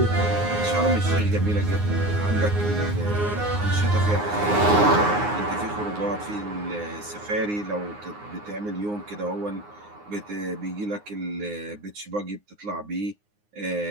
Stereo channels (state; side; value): late; left; 9.7 ms